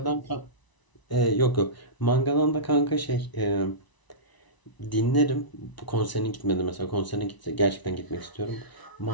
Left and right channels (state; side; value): late; right; 1.0 ms